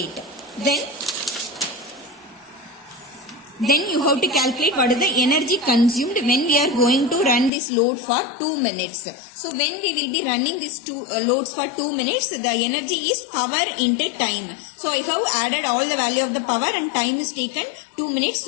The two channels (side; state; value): right; drops out; at 7.5 s